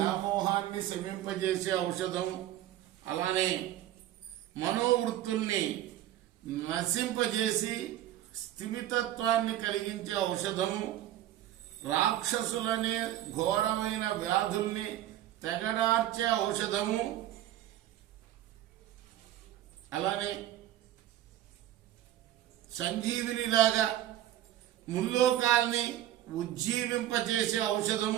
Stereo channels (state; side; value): quieter; left; 13.0 dB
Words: శమింపజేసే ఔషధం, అలానే మనోవృత్తుల్ని నశింపజేసి స్థిమితత్వాన్ని కలిగించే ఔషధము, రాక్షసులనే ఘోరమైన వ్యాధుల్ని తెగడార్చే ఔషధము, అలానే సంజీవినిలాగా ముల్లోకాల్ని ఉజ్జీవింపజేసే